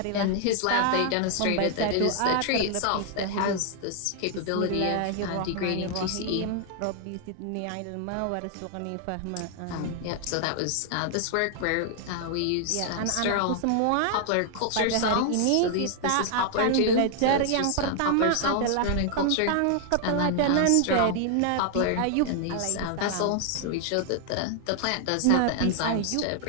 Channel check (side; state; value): both; different; correlation 0.00